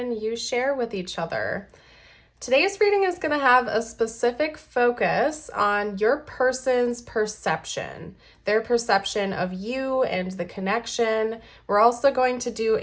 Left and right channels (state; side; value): identical; both; correlation 1.00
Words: you share with each other. Today's reading is going to have a specific focus on your person's perception, their perception of you and the connection. We're also going to do